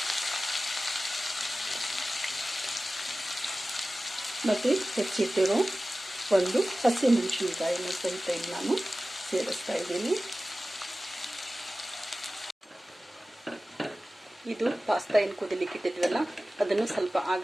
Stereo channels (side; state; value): both; normal; correlation 0.96